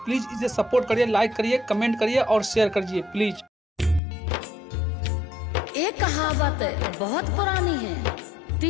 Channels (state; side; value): drops out; right; at 4.0 s